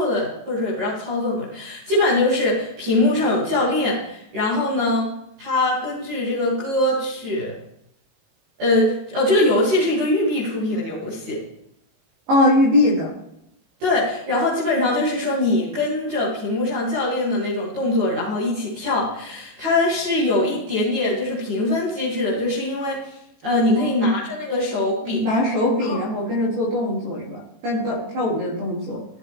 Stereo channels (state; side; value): late; left; 18 ms